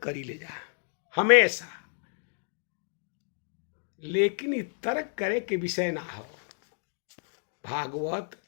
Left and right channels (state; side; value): silent; right; digital silence